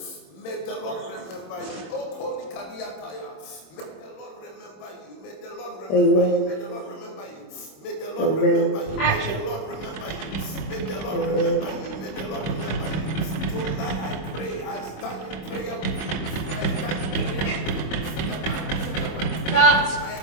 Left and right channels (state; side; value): late; right; 26 ms